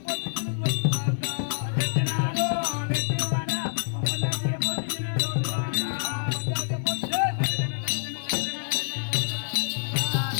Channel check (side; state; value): right; silent; digital silence